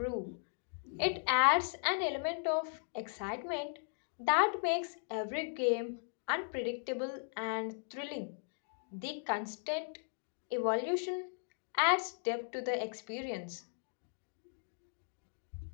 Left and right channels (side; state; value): right; silent; digital silence